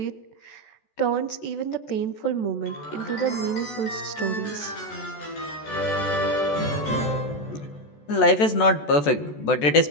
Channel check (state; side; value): late; right; 14 ms